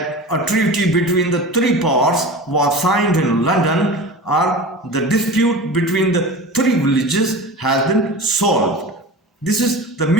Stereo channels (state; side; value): normal; both; correlation 0.33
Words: a treaty between the three powers was signed in London, or the dispute between the three villages has been solved. This is the